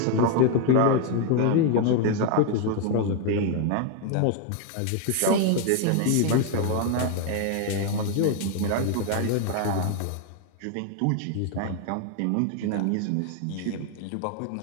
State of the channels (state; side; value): different; both; correlation 0.01